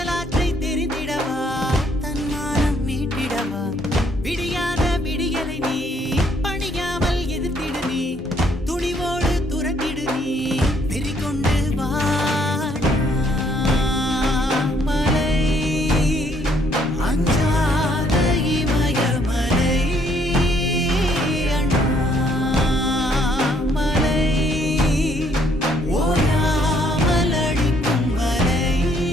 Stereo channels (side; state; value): both; normal; correlation 0.67